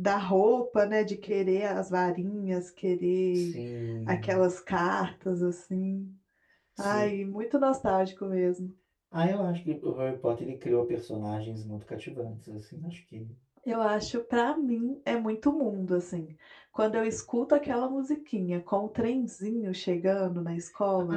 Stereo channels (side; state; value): both; identical; correlation 1.00